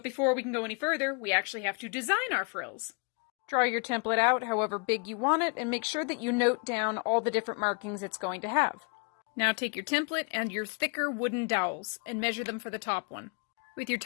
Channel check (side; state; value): right; quieter; 35.4 dB